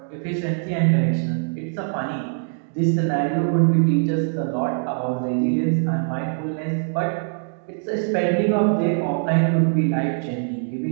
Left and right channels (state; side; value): silent; left; 64 dB below the other